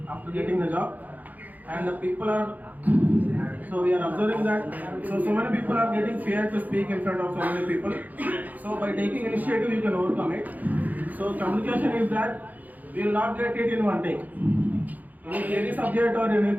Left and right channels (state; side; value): late; left; 0.081 ms